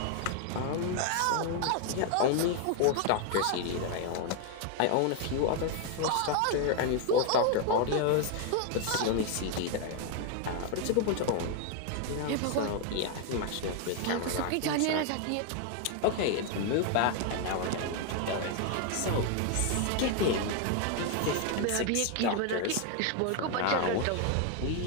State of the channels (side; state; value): both; different; correlation 0.00